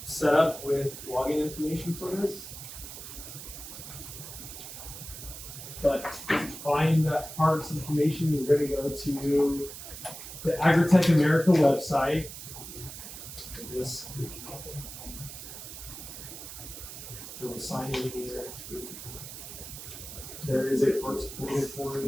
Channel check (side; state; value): right; noise; hiss, 11 dB below the sound